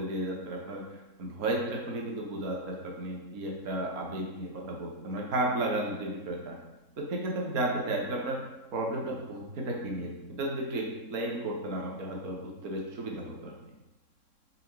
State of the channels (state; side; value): late; left; 3.7 ms